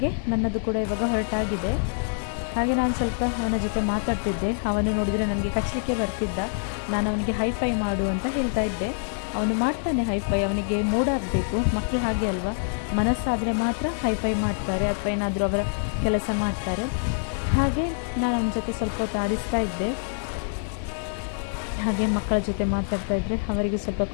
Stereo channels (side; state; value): right; silent; 61 dB below the other